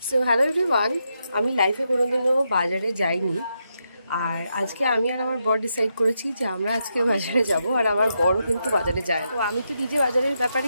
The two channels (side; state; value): both; inverted; correlation -0.83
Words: সো হ্যালো এভরিওয়ান, আমি লাইফে কোনোদিনও বাজারে যাইনি। আর আজকে আমি আর আমার বর ডিসাইড করেছি যে আমরা আজকে বাজারে যাব। আর আমার বরও কিন্তু বাজারে যায়। তো আমি তো নিজে বাজারের ব্যাপারে